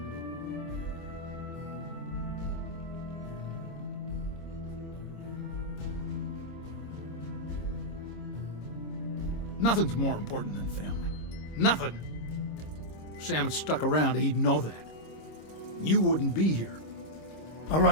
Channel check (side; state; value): right; late; 26 ms